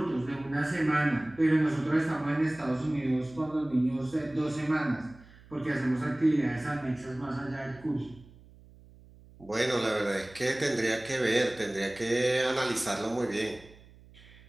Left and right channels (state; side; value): noise; right; hum, 23 dB below the sound